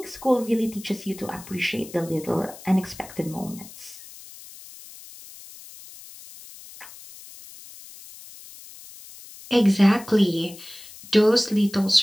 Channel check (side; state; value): left; noise; hiss, 18 dB below the sound